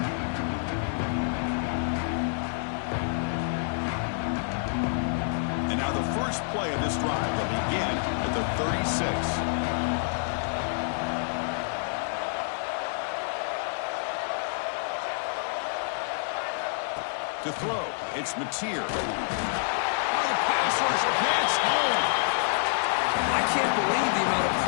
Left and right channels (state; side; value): silent; right; digital silence